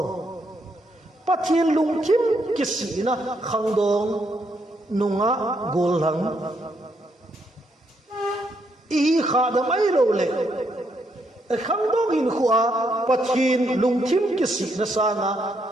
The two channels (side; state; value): both; normal; correlation 0.76